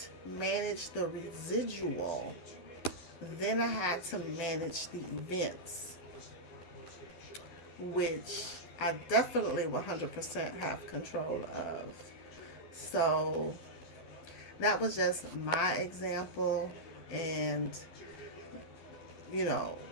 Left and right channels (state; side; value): late; right; 12 ms